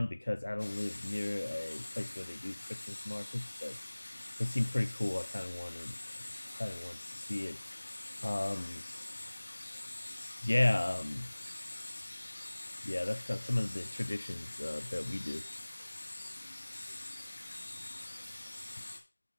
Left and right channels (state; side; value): inverted; both; correlation -1.00